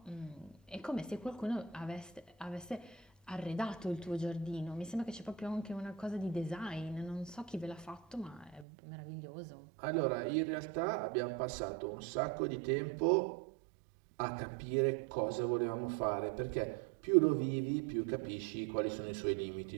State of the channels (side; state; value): left; drops out; at 8.7 s